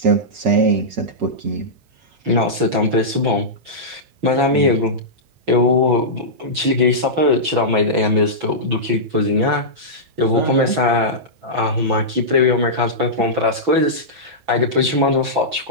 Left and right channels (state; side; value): late; left; 6.0 ms